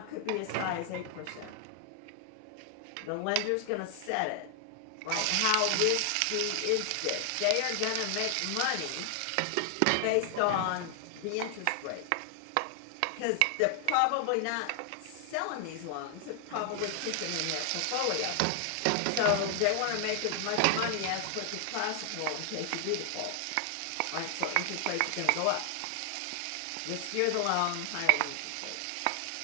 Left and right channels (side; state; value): both; different; correlation 0.00